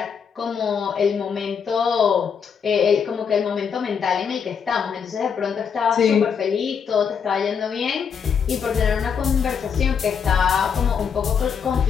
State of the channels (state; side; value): quieter; right; 6.8 dB